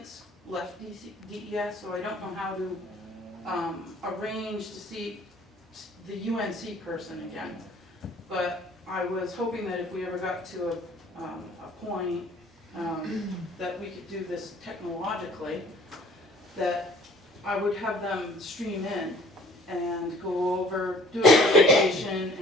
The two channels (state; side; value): normal; both; correlation 0.54